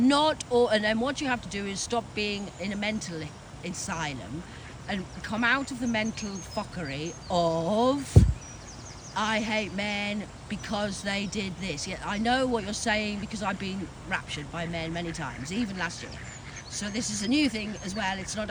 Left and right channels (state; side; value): identical; both; correlation 1.00